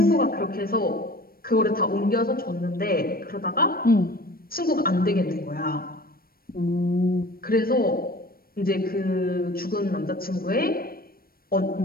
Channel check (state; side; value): late; right; 0.43 ms